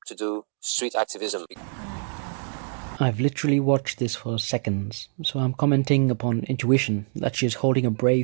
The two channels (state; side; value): silent; left; 62 dB below the other